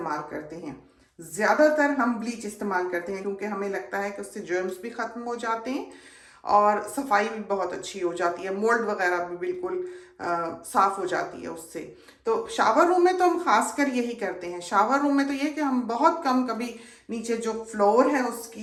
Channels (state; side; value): identical; both; correlation 1.00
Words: करते हैं, ज्यादातर हम ब्लीच इस्तेमाल करते हैं क्योंकि हमें लगता है कि उससे जर्म्स भी खत्म हो जाते हैं और सफाई भी बहुत अच्छी हो जाती है, मोल्ड वगैरह भी बिल्कुल साफ हो जाती है उससे। तो शावर रूम में तो हम खासकर यही करते हैं। शावर रूम में तो ये कि हम बहुत कम, कभी नीचे जो फ्लोर है